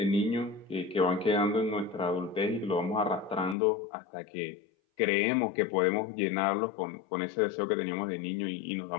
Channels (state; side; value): drops out; right; at 3.6 s